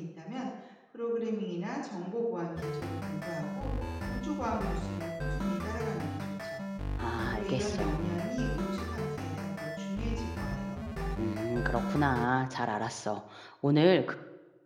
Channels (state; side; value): identical; both; correlation 1.00